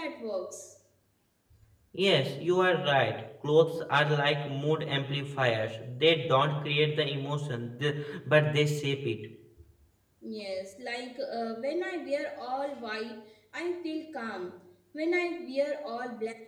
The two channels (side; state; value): both; identical; correlation 1.00